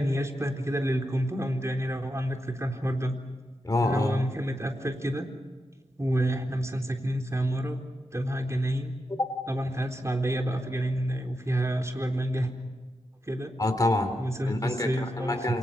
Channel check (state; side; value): normal; both; correlation 0.86